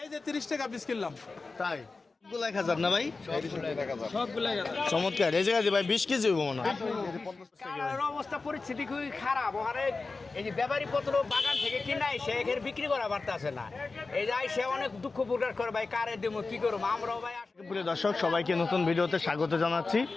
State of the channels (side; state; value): right; quieter; 3.9 dB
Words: এই যে 30 টাকা পিস কিনলাম। তাই সবগুলো 1000 না ভাই? সবগুলো 1000। চমৎকার। এই জায়গায় ভাই 20 কেজি হইব মনে হয়। কাঁঠালের অবস্থা পরিস্থিতি খুবই খারাপ। ওখানে এই যে ব্যাপারী পত্র বাগান থেকে কিনে এসে এখানে বিক্রি করা পারতেছে না। এই যে সে অনেক দুঃখ প্রকাশ করে, ভাই কারে দেবো কি করবো আমরাও ভাই। প্রিয় দর্শক, সবাইকে নতুন ভিডিওতে স্বাগত জানাচ্ছি।